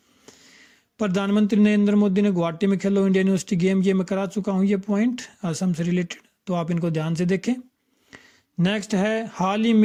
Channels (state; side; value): identical; both; correlation 1.00